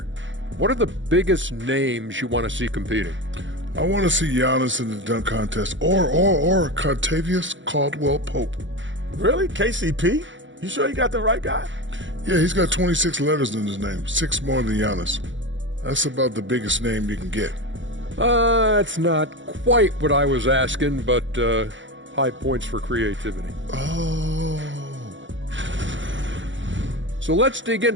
What are the biggest names you want to see competing? I want to see Giannis in the dunk contest or Contavious Caldwell-Pope. Really? KCP? You sure you got the right guy? Yeah, he's got 26 letters in his name, 6 more than Giannis. That's about the biggest name you can get. It's not quite what I was asking, but high points for creativity. Oh. So let's dig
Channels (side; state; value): left; late; 0.55 ms